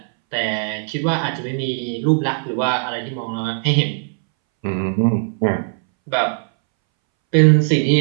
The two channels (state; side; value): silent; left; 64 dB below the other